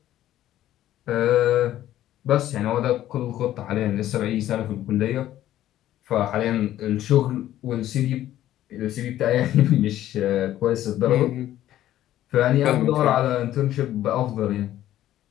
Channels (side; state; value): right; quieter; 13.1 dB